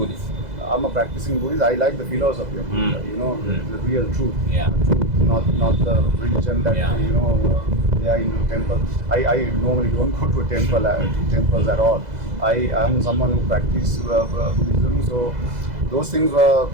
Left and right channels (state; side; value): late; left; 2.0 ms